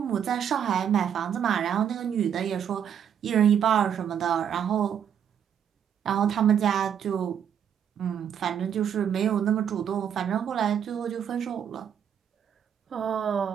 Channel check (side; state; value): left; quieter; 8.6 dB